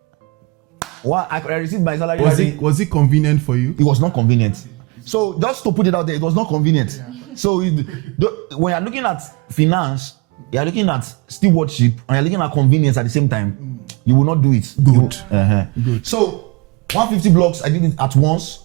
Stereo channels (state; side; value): quieter; left; 26.8 dB